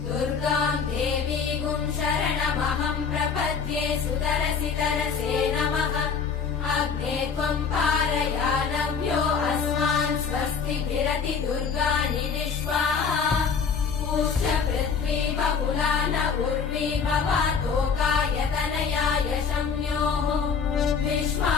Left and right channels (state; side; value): quieter; right; 6.0 dB